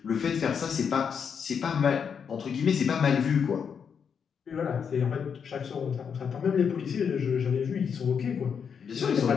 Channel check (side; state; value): right; quieter; 6.9 dB